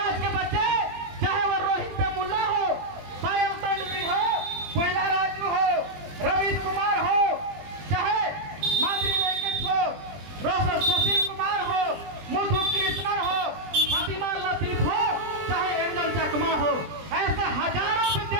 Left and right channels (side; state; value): left; late; 20 ms